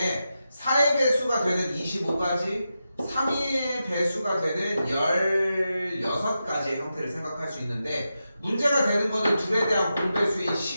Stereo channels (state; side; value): inverted; both; correlation -0.89